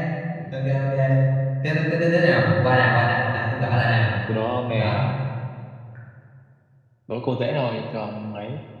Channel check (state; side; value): identical; both; correlation 1.00